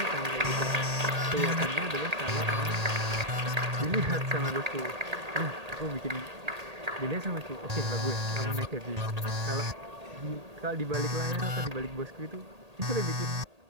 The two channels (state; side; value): late; left; 1.8 ms